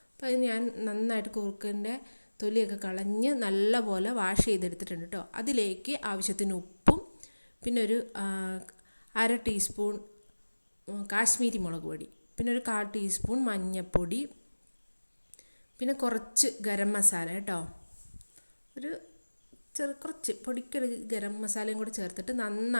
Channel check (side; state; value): both; inverted; correlation -1.00